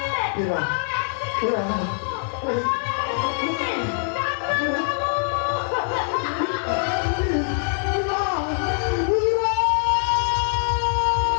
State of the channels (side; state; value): right; silent; 63 dB below the other